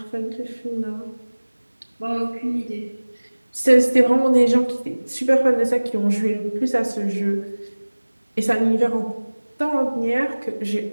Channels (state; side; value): inverted; both; correlation -1.00